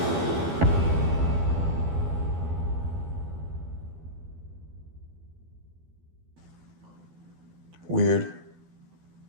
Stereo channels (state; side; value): late; left; 12 ms